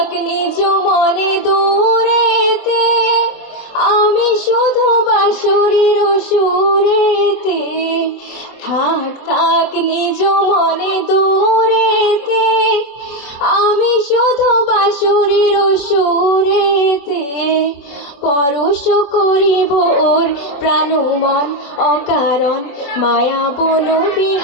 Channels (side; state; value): right; late; 24 ms